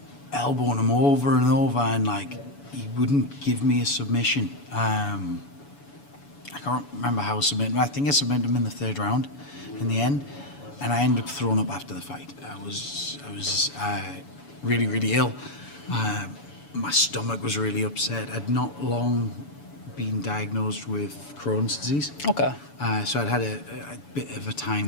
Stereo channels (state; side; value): late; right; 7.0 ms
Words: elbowing him over and over, and like he wouldn't give me a submission. I can't remember how I submitted him. I think I submitted him in the third round in the end, and I ended up throwing up after the fight. I was really, really ill. My stomach was really upset. I'd not long been diagnosed with Crohn's disease. Okay. So I'd had a bit of a